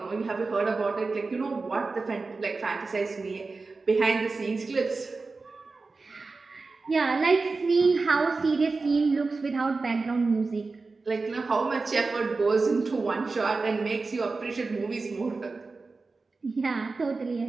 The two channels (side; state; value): left; quieter; 3.9 dB